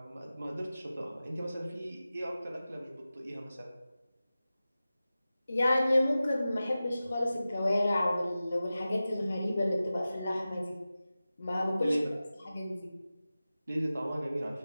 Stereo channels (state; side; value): inverted; both; correlation -0.95